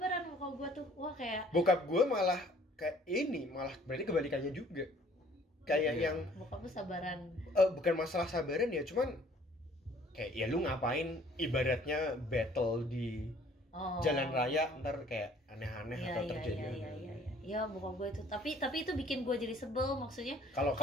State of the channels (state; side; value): normal; both; correlation 0.57